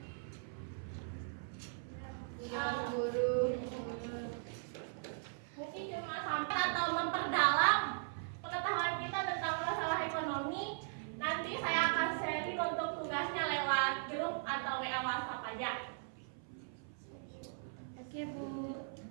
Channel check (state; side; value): silent; left; 52 dB below the other